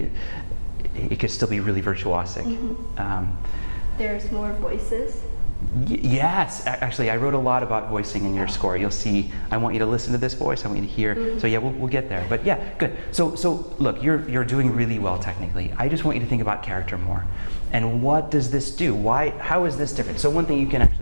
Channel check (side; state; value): both; inverted; correlation -1.00